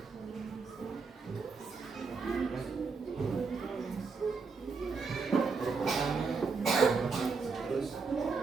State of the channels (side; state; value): left; quieter; 4.9 dB